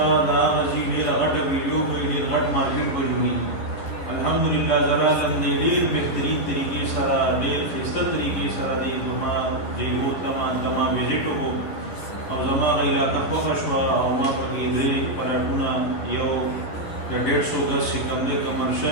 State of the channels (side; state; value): right; late; 11 ms